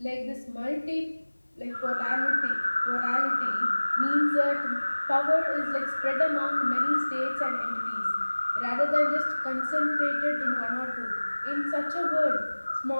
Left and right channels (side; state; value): both; inverted; correlation -1.00